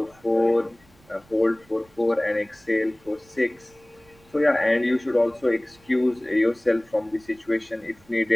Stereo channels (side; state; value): right; noise; rumble, 29 dB below the sound